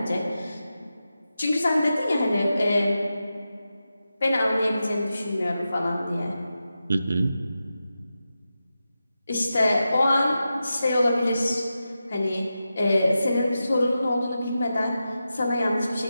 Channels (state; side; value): inverted; both; correlation -0.91